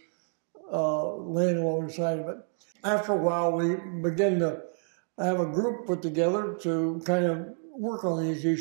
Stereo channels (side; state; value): left; silent; 59 dB below the other